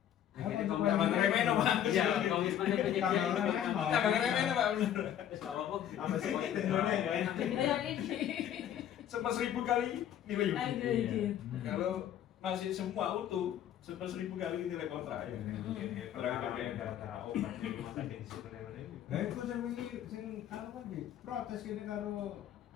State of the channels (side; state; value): right; quieter; 10.5 dB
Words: Akhirnya Apa Tambah ngeremehin, Pak. Iya, komitmennya penyedia Tambah itu ngeremehin, Pak. Tambah ngeremehin, Pak, bener. Terus nggak apa-apa. Apa sih Indonesia ya? Jadi yang ini. Sama 1000 kali nilai unit. Lanjut. Kalau masih semua utuh 100.000 kali nilai kontrak ya. Gara-gara obat di rumah sakit di situ ini. Lah iku sing wingi sing anu kan iki protes kene karo